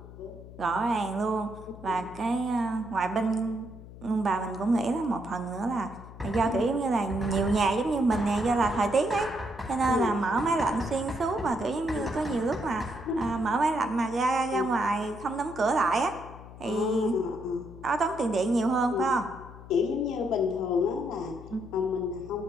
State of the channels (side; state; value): left; noise; hum, 16 dB below the sound